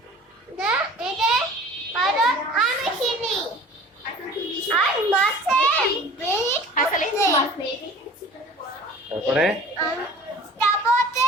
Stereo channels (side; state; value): both; normal; correlation 0.44